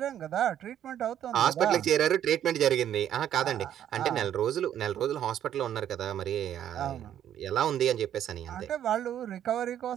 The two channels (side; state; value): left; quieter; 10.5 dB